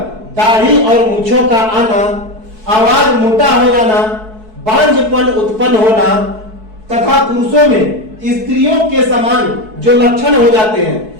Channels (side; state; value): left; late; 4.6 ms